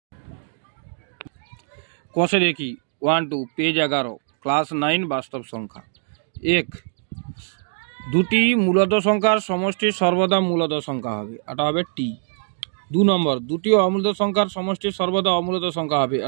কষে দেখি 1-2 পেজ 11 ক্লাস 9 বাস্তব সংখ্যা। 1, দুটি মূলদ সংখ্যার সমষ্টি সর্বদা মূলদ সংখ্যা হবে, এটা হবে টি। 2 নম্বর, দুটি অমূলদ সংখ্যার সমষ্টি সর্বদা অমূলদ সংখ্যা হবে,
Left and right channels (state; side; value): silent; left; 64 dB below the other